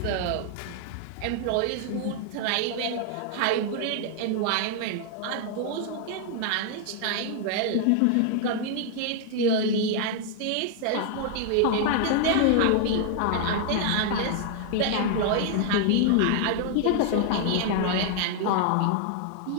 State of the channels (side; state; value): both; different; correlation 0.00